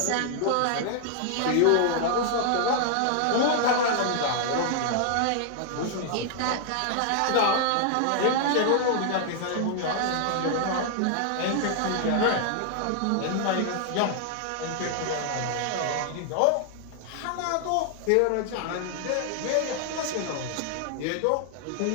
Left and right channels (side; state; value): both; different; correlation 0.00